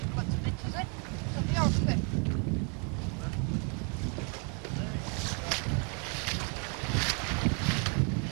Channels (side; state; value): left; quieter; 37.7 dB